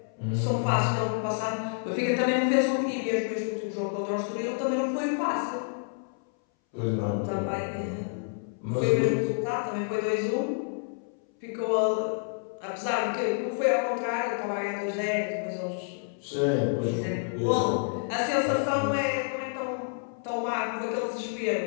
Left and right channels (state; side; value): silent; right; 59 dB below the other